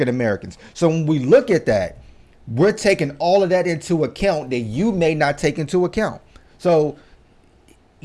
Americans. So when we look at that, we're taking all of that into account that you may not take into account. So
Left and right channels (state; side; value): identical; both; correlation 1.00